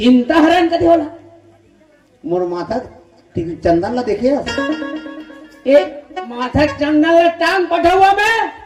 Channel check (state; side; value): identical; both; correlation 1.00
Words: हरण कदी होला मोर माथा ठीक चंदन ला देखे एक माथा चंदन ला टांग पठौआ में